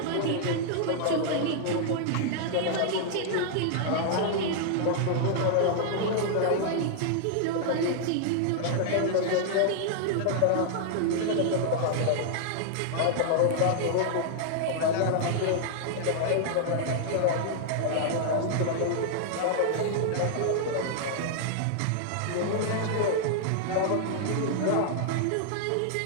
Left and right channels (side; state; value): both; different; correlation -0.01